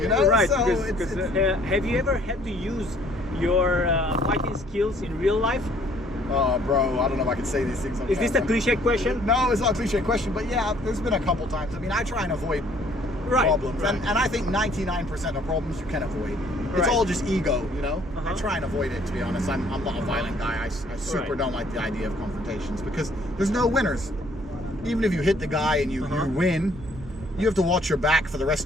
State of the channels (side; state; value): both; normal; correlation 0.60